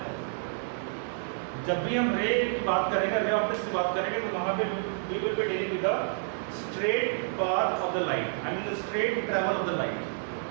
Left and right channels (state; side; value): silent; left; 58 dB below the other